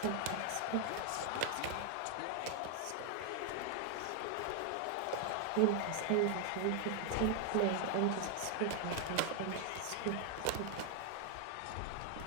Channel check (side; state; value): both; different; correlation 0.00